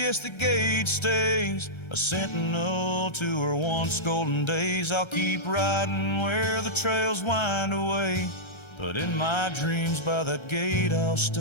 the gate stays, a sentinel to her once golden days. I'll keep riding where the trails wind away, but in my dreams by that gate I'll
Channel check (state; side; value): late; right; 1.3 ms